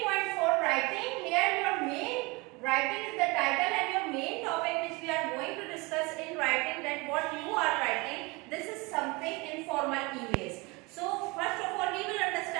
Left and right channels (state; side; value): quieter; left; 25.6 dB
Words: writing. Here your main writing is the title and your main topic which we are going to discuss in writing, that what you are writing. This is something informal emails. So first of all we will